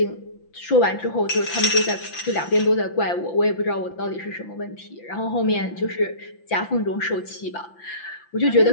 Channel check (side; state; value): right; late; 5.9 ms